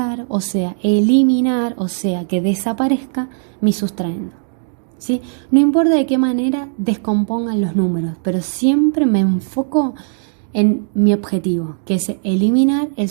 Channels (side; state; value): left; silent; digital silence